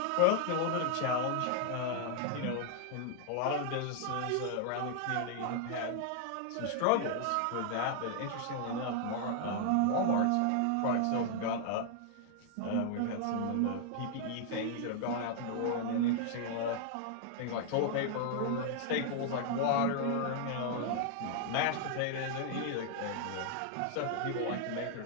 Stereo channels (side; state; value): both; different; correlation 0.00